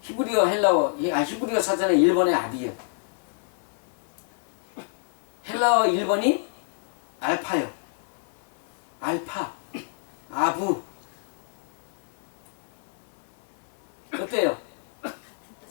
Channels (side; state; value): right; silent; 60 dB below the other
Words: 히브리어 헬라어, 히브리어 사전에 1번에 아비예요. 헬라어 1번이 알파요. 알파, 아부. 어때요?